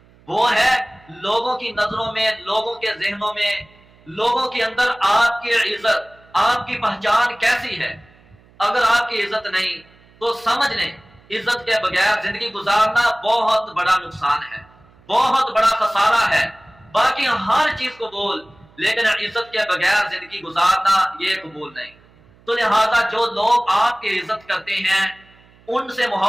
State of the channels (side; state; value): right; noise; hum, 29 dB below the sound